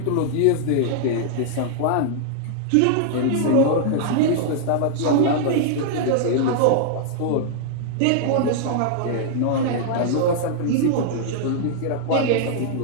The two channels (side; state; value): both; different; correlation -0.01